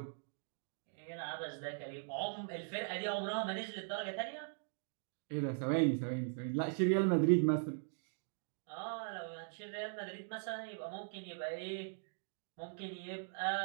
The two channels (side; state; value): left; silent; digital silence